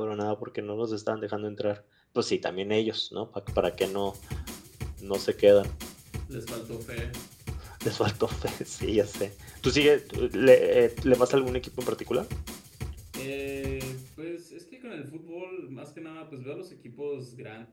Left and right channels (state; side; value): identical; both; correlation 1.00